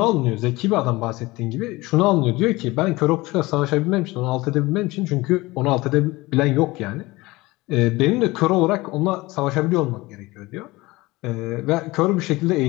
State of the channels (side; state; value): right; quieter; 20.9 dB